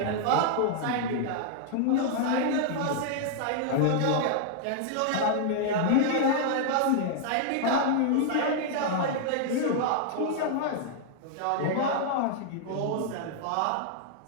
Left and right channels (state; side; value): different; both; correlation -0.01